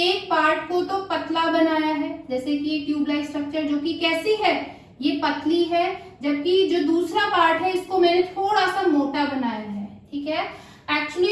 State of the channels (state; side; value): identical; both; correlation 1.00